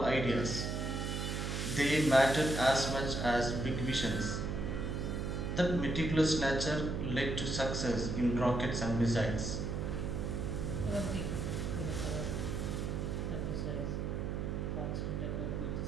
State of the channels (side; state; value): right; noise; hum, 2 dB below the sound